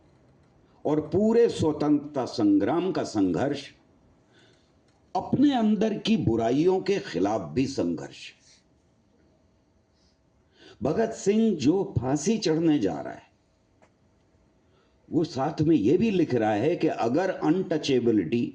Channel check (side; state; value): both; identical; correlation 1.00